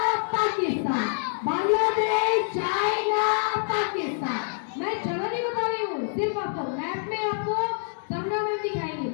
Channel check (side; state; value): right; silent; digital silence